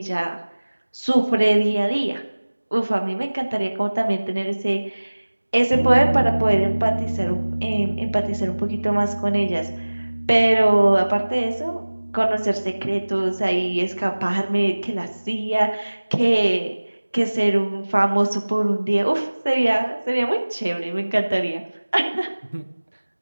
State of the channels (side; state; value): both; inverted; correlation -1.00